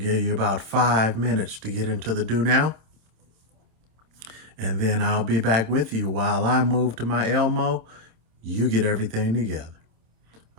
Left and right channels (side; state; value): left; late; 26 ms